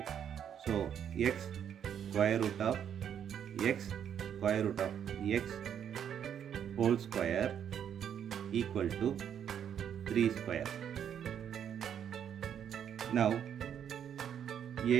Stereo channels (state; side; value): quieter; left; 8.9 dB